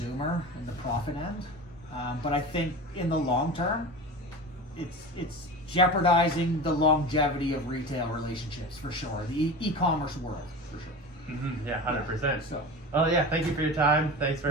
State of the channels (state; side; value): normal; both; correlation 0.30